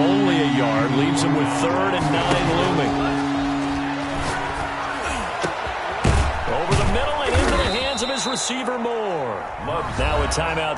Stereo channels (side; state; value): both; identical; correlation 1.00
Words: a yard. Leaves him with 3rd and 9 looming. Over the middle and into the hands of his receiver, Moore. Now a